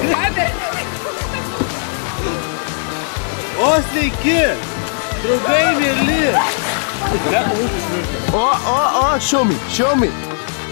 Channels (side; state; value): right; silent; digital silence